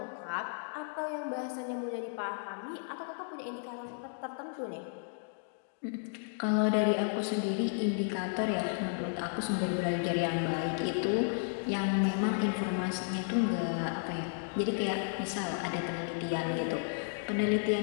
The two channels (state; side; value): silent; right; digital silence